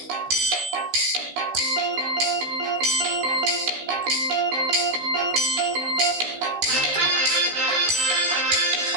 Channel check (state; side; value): late; left; 16 ms